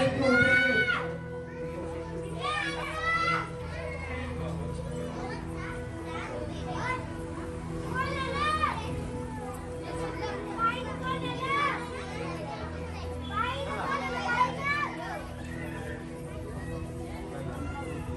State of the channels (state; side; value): identical; both; correlation 1.00